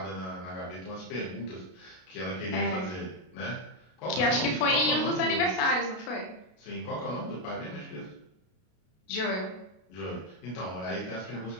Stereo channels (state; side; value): late; right; 33 ms